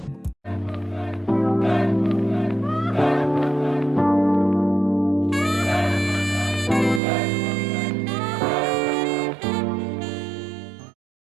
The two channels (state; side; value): drops out; left; at 7.0 s